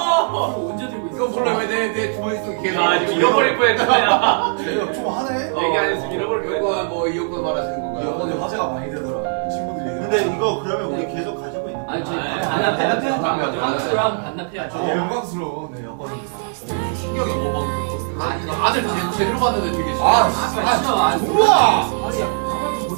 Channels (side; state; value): left; silent; 66 dB below the other